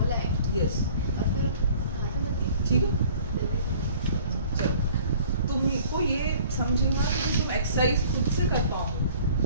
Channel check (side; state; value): both; inverted; correlation -0.51